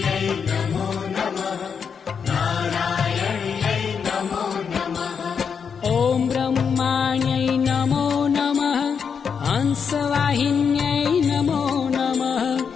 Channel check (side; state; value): right; quieter; 6.5 dB